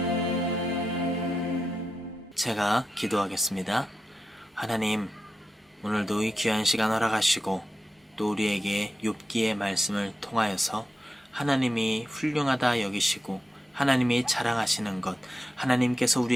제가 기도하겠습니다. 하나님, 오늘도 이 귀한 시간 허락하시고 또 우리에게 욥기의 말씀을 통하여서 하나님이 훌륭하다 여기시고 하나님이 자랑하시는 것, 하나님께서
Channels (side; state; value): both; normal; correlation 0.88